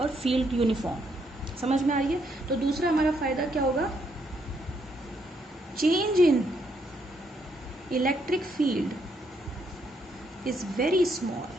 फील्ड यूनिफॉर्म। समझ में आ रही है? तो दूसरा हमारा फायदा क्या होगा, change in electric field is very small,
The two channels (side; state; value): both; normal; correlation 0.74